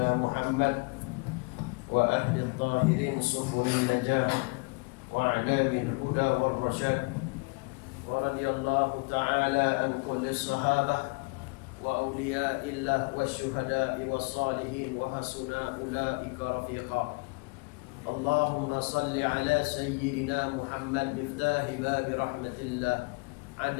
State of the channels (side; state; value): right; quieter; 30.9 dB